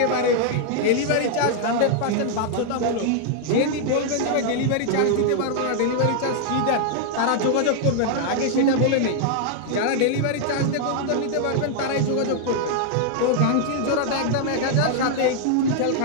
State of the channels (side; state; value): both; different; correlation 0.00